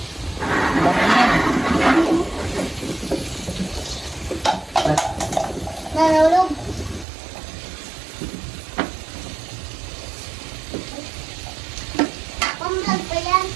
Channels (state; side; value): drops out; left; at 7.1 s